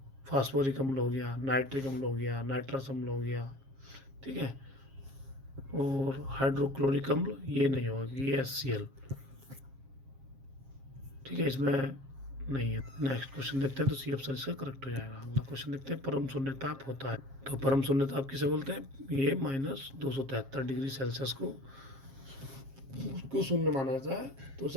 फास्फोरिक अम्ल हो गया, नाइट्रिक अम्ल हो गया, नाइट्रस अम्ल हो गया। ठीक है, और हाइड्रोक्लोरिक अम्ल ये नहीं होगी, ये HCl। ठीक है, इसमें नहीं है। नेक्स्ट क्वेश्चन देखते हैं, तो C ऑप्शन इसका करेक्ट हो जाएगा। अगला क्वेश्चन देखते हैं। परम शून्य ताप होता है, तो परम शून्य ताप किसे बोलते हैं? ये -273 डिग्री सेल्सियस को उसको शून्य माना जाता है, तो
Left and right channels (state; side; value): late; left; 7.4 ms